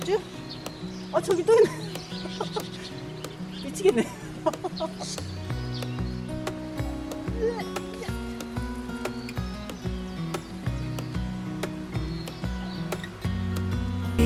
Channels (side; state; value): both; identical; correlation 1.00